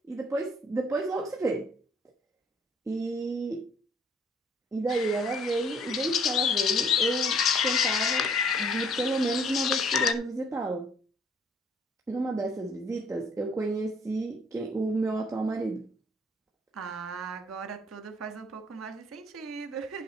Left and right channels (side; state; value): both; normal; correlation 0.59